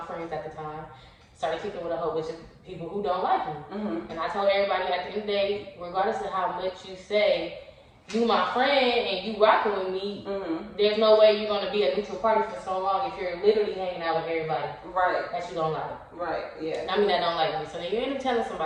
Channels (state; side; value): identical; both; correlation 1.00